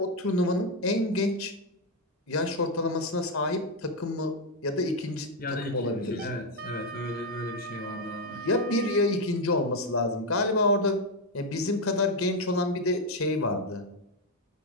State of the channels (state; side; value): normal; both; correlation 0.05